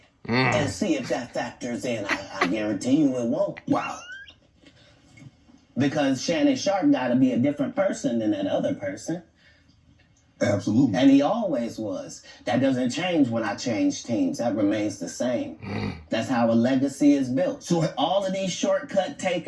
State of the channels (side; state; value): both; identical; correlation 1.00